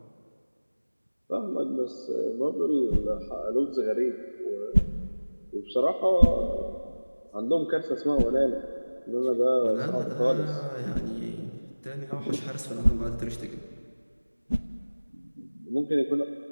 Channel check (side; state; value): both; inverted; correlation -1.00